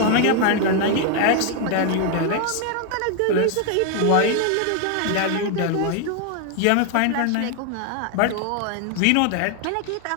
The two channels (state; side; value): different; both; correlation 0.00